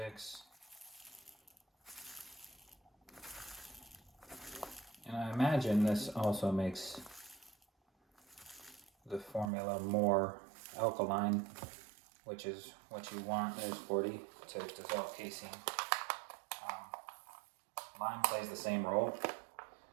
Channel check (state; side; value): drops out; left; at 9.5 s